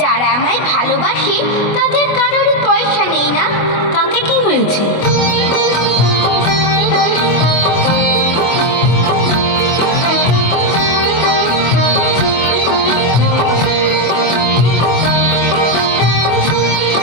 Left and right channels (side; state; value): right; late; 25 ms